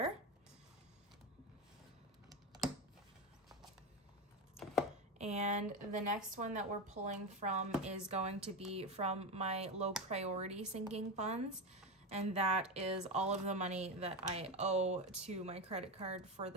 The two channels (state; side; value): normal; both; correlation 0.16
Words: And the next one that we're pulling from is going to be from my low priority sinking funds. And that is all of the money that I owe to my credit card for